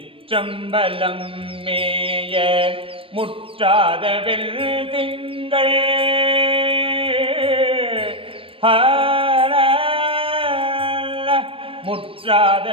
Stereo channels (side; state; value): left; late; 0.26 ms